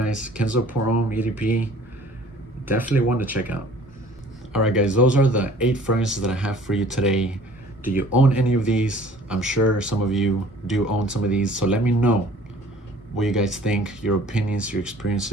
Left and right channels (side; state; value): both; normal; correlation 0.52